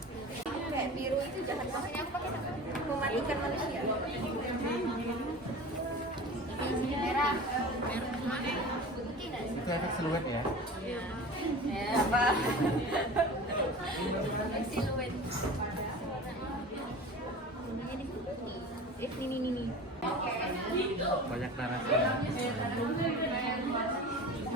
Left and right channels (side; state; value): both; normal; correlation 0.36